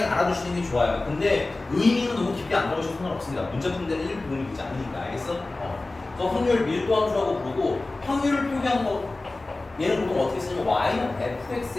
알아두시는 게 좋아요. 근데 의미는 너무 깊게 안 들어가셔도 상관없습니다. 문제 푸는 데는 1 도움이 되지 않으니까. 알겠어? 그래서 확률 밀도 함수라고 부르고 확률을 표기한 거 얘는 보통 어떻게 쓰냐면 y는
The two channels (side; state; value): right; quieter; 3.1 dB